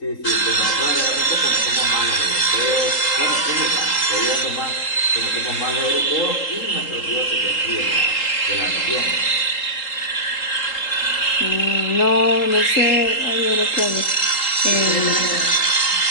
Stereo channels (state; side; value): late; right; 3.8 ms